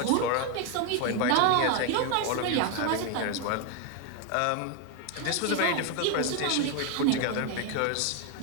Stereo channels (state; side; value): different; both; correlation 0.01